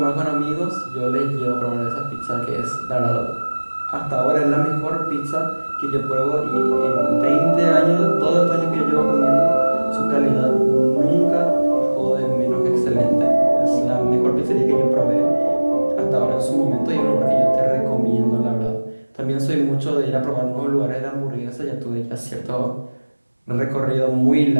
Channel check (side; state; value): both; inverted; correlation -1.00